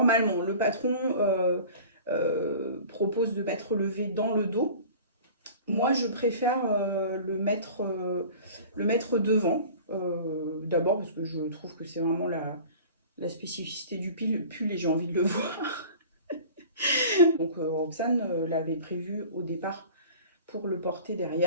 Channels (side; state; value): both; inverted; correlation -0.42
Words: le patron propose de mettre le V dans le dos. Moi, je préfère le mettre devant. D'abord, parce que je trouve que c'est vraiment la spécificité du pull et j'ai envie de le voir. Donc, Roxane l'avait prévu au départ pour le porter